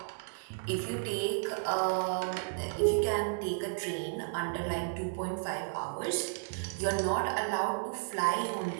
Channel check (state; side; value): silent; left; digital silence